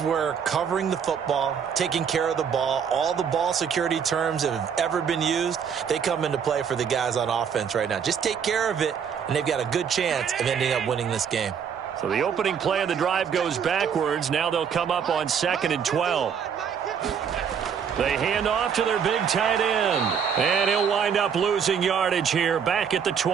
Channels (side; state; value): left; quieter; 7.3 dB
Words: where covering the football, taking care of the ball, all the ball security terms that have ever been used, they come into play for the guys on offense right now. Just take care of it, and they've got a good chance of ending up winning this game. So the opening play of the drive goes backwards. Now they'll come up on 2nd and 12. They hand off to their big tight end. And he'll wind up losing yardage here back at the